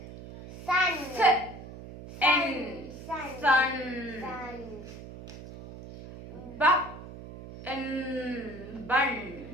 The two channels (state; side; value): noise; right; hum, 14 dB below the sound